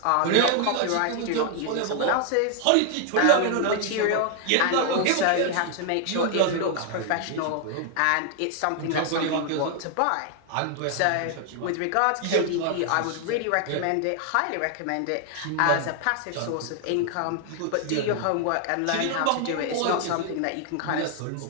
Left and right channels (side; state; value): both; different; correlation 0.00